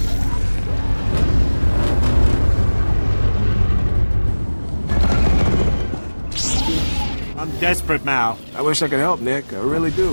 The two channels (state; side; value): inverted; both; correlation -1.00